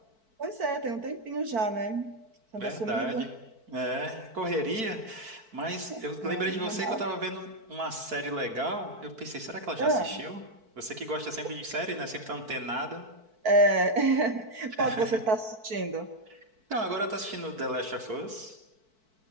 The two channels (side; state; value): left; late; 4.5 ms